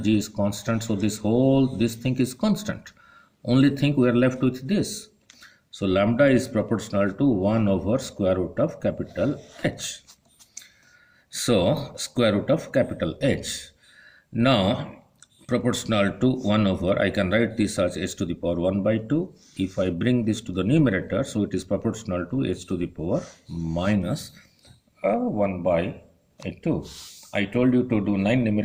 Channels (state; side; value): identical; both; correlation 1.00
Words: g is constant. So this thing is constant. Only thing we are left with this. So lambda is proportional to 1 over square root of capital H. So square root of capital H. Now proportional to 1 over, I can write this as h to the power 1 by 2. If I bring this to the numerator, so it is proportional to h to the power minus 1 by 2. I told you to do 9